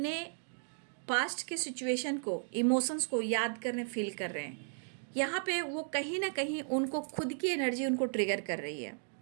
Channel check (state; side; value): silent; left; digital silence